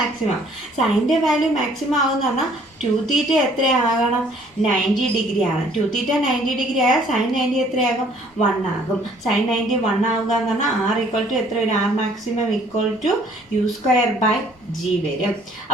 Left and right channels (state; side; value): normal; both; correlation 0.59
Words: സൈനിൻ്റെ വാല്യൂ മാക്സിമം ആകുമെന്ന് പറഞ്ഞാൽ 2θ എത്രയാകണം? 90 ഡിഗ്രി ആകണം. 2θ 90 ഡിഗ്രി ആയാൽ സൈൻ 90 എത്രയാകും? 1 ആകും. സൈൻ 90 1 ആവുക എന്ന് പറഞ്ഞാൽ r = എത്ര വരും? r maximum = u² by g വരും.